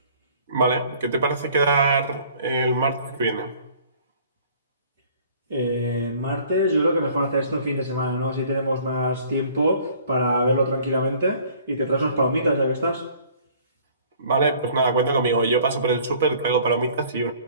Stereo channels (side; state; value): both; inverted; correlation -0.54